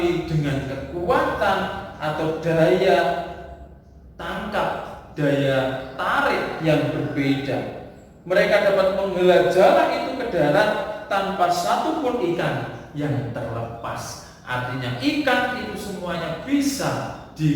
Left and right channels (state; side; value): identical; both; correlation 1.00